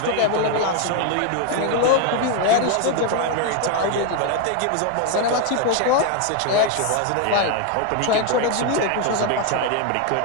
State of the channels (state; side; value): different; both; correlation 0.01